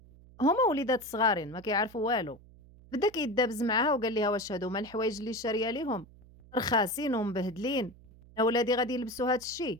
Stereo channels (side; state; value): right; noise; hum, 23 dB below the sound